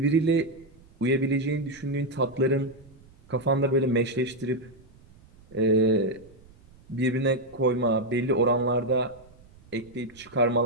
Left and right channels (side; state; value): right; noise; rumble, 26 dB below the sound